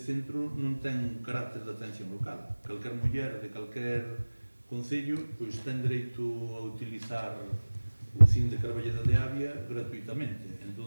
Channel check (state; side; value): inverted; both; correlation -1.00